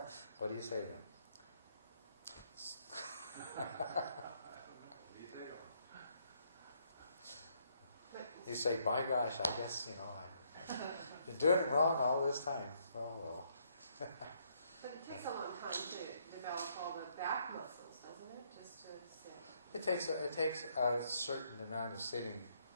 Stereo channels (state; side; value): inverted; both; correlation -0.71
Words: what do you say then? You say, by gosh, I guess, I've been doing it wrong all this time. Oh, well. But it takes a long time to develop all the back muscles, doesn't it? Just to sit. It takes a certain amount of sitting